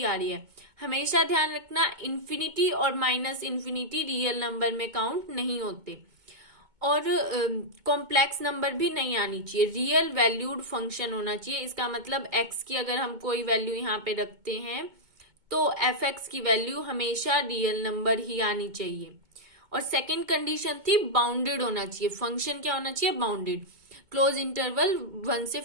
आ रही है। हमेशा ध्यान रखना, इन्फिनिटी और माइनस इन्फिनिटी रियल नंबर में काउंट नहीं होते, और कॉम्प्लेक्स नंबर भी नहीं आनी चाहिए। रियल वैल्यूड फंक्शन होना चाहिए। इसका मतलब x की अगर हम कोई वैल्यू यहाँ पे रखते हैं तो एफ एक्स की वैल्यू हमेशा रियल नंबर ही आनी चाहिए। और सेकेंड कंडीशन थी बाउंडेड होना चाहिए। फंक्शन क्या होना चाहिए, बाउंडेड, क्लोज इंटरवल 1 से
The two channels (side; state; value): left; late; 2.2 ms